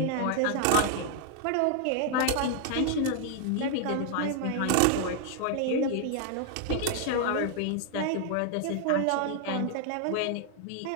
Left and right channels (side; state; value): both; different; correlation 0.00